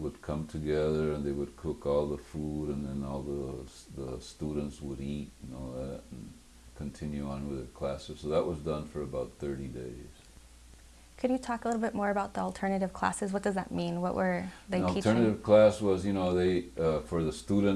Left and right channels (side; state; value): both; identical; correlation 1.00